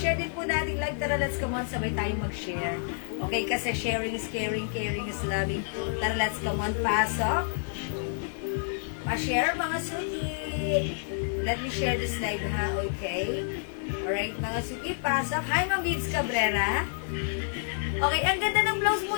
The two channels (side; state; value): right; silent; digital silence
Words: din po natin live. Tara, let's come on. Sabay tayo mag-share. Okay, kasi sharing is caring. Caring is loving. Tara, let's come on. Pasok. Pa-share mga suki. Let me share this live ha, okay? Alright, mga suki, pasok. Hi, Ma'am Bibs Cabrera. Okay, ang ganda ng blouse mo.